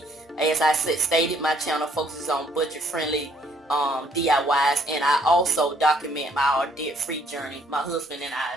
As I stated, my channel focuses on budget friendly DIYs, and I also document our debt-free journey, my husband and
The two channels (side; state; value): both; normal; correlation 0.66